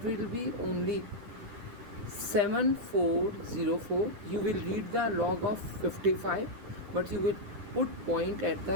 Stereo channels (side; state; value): left; late; 9.9 ms